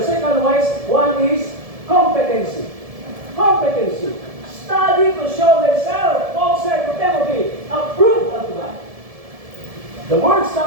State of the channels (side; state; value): left; late; 1.7 ms